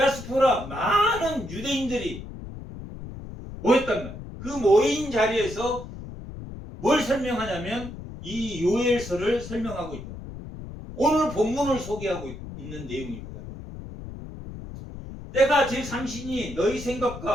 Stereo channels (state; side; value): noise; left; rumble, 11 dB below the sound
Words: 많은 유대인들이 모였단 말이에요. 그 모인 자리에서 뭘 설명하냐면 이 요엘서를 설명하고 있다. 오늘 본문을 소개하고 있는 내용입니다. 때가 제3신이 너희